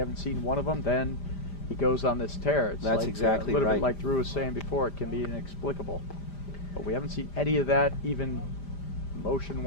seen one of them. Then he goes on this tear. It's That's like, exactly a little right. bit like Drew was saying before. It can be inexplicable. But we haven't seen any of that, even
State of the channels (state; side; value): late; right; 5.0 ms